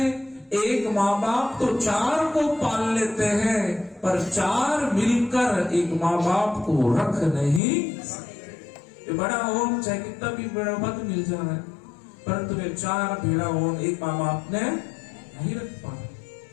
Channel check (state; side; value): drops out; right; at 7.6 s